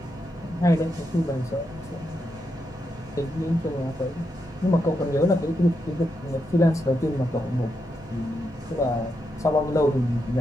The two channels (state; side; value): normal; both; correlation 0.83